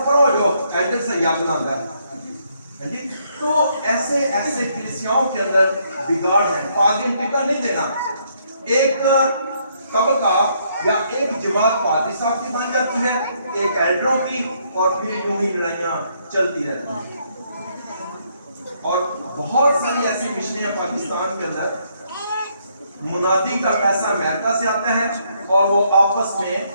پڑھو جو ایلڈر سے یاد نہ ہے. تو ایسے کلیسیاؤں کے اندر بگاڑ ہے. پادری ٹکٹ نہیں دینا، ایک طبقہ یا ایک جماعت پادری صاحب کی بن جاتی ہے، ایک ایلڈروں کی، اور پھر یوں ہی لڑائیاں چلتی رہتی ہیں. اور بہت ساری ایسی مشنیں پاکستان کے اندر मुनादी का पैसा अमेरिका से आता है और वो आपस में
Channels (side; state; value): both; inverted; correlation -0.71